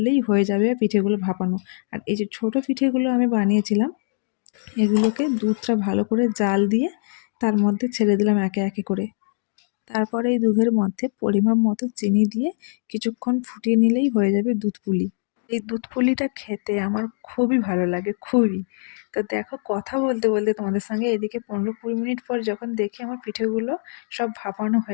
হয়ে যাবে পিঠেগুলো ভাপানো। আর এই যে ছোট পিঠেগুলো আমি বানিয়েছিলাম, এগুলোকে দুধটা ভালো করে জাল দিয়ে তার মধ্যে ছেড়ে দিলাম একে একে করে। তারপরে এই দুধের মধ্যে পরিমাপ মতো চিনি দিয়ে কিছুক্ষণ ফুটিয়ে নিলেই হয়ে যাবে দুধ পুলি। এই দুধ পুলিটা খেতে আমার খুবই ভালো লাগে, খুবই। তো দেখো, কথা বলতে বলতে তোমাদের সঙ্গে এদিকে 15-20 মিনিট পর যখন দেখি আমার পিঠেগুলো সব ভাপানো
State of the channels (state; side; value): silent; right; digital silence